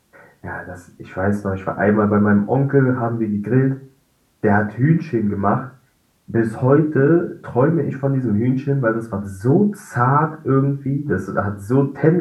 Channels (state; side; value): identical; both; correlation 1.00